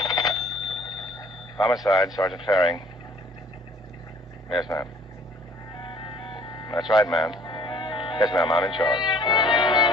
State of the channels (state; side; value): normal; both; correlation 0.56